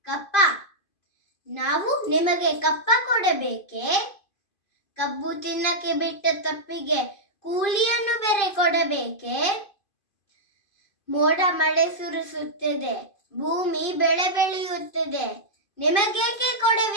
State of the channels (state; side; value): late; right; 2.5 ms